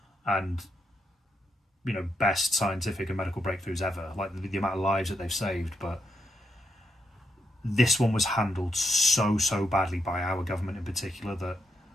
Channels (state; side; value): normal; both; correlation 0.81